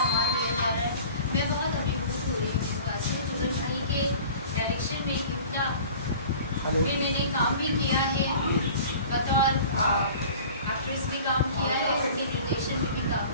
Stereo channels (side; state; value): both; inverted; correlation -0.43